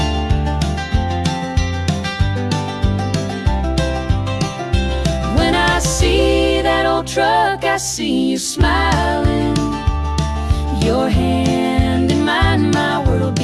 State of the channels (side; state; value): both; identical; correlation 1.00